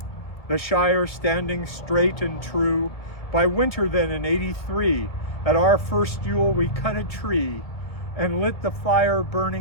the shire standing straight and true. By winter then in 83, at our first Yule we cut a tree, and lit the fire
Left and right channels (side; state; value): right; late; 1.9 ms